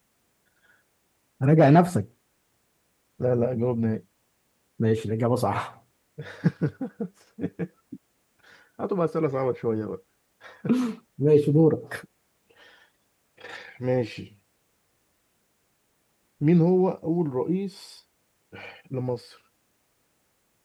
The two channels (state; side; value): identical; both; correlation 1.00